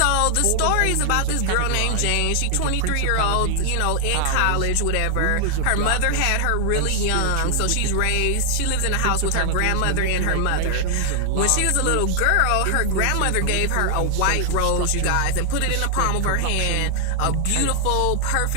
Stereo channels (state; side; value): different; both; correlation 0.00